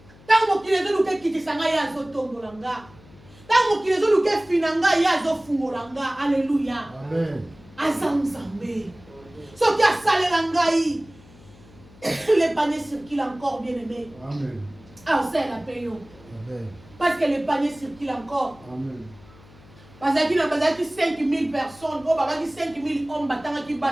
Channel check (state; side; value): noise; left; hum, 24 dB below the sound